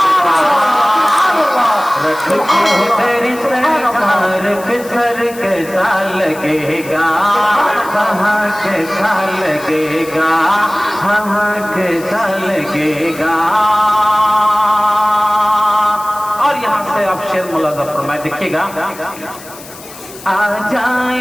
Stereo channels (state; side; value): noise; left; hiss, 17 dB below the sound